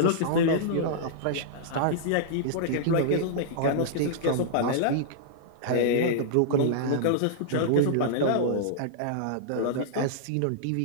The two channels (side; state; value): both; different; correlation -0.02